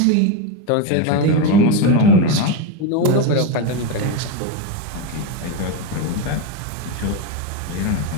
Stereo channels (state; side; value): different; both; correlation 0.04